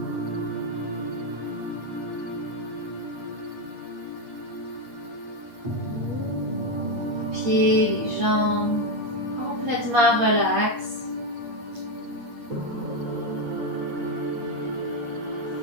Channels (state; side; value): late; left; 8.5 ms